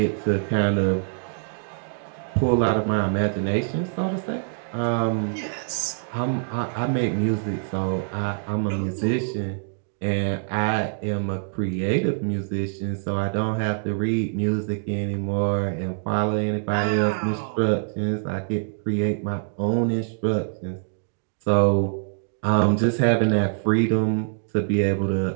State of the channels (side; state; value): left; silent; digital silence